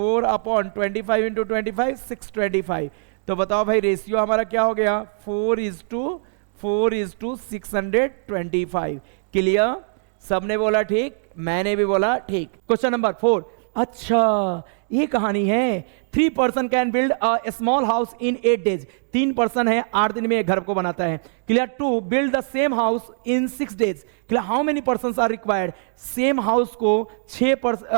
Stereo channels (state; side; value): silent; left; digital silence